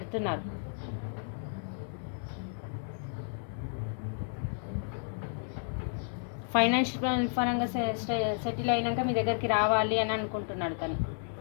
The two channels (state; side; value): silent; right; 56 dB below the other